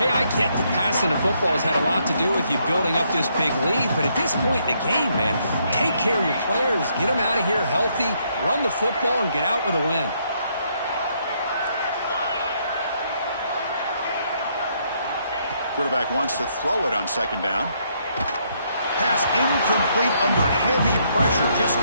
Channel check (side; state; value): both; inverted; correlation -0.73